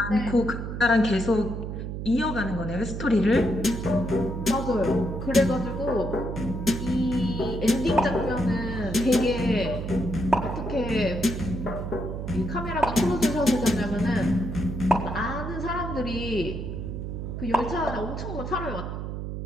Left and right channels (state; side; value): noise; right; hum, 5 dB below the sound